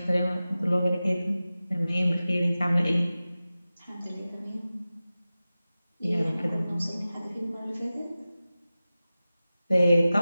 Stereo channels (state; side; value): inverted; both; correlation -0.96